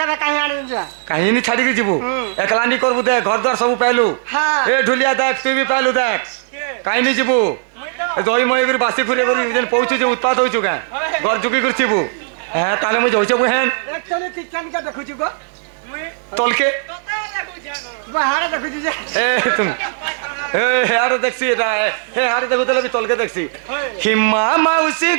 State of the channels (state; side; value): silent; left; 60 dB below the other